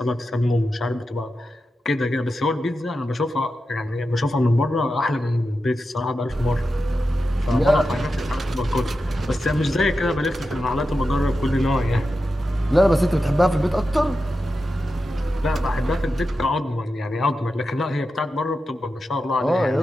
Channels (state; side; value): normal; both; correlation 0.90